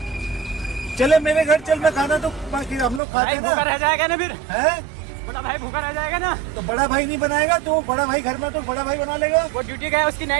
चले मेरे घर चल, मैं खाना तो बाकी हम लोग खाते भाई हैं भूखा ना। रह जाएगा ना फिर। है? बड़ा भाई भूखा रह जाएगा ना। तो बड़ा भाई नहीं बनाएगा तो बड़ा भाई घर में तो बड़ा भाई बना लेगा। वो ड्यूटी गया, उसकी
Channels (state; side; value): drops out; left; at 3.0 s